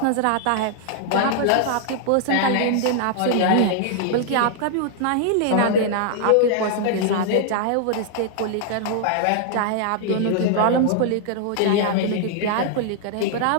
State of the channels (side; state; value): both; different; correlation -0.01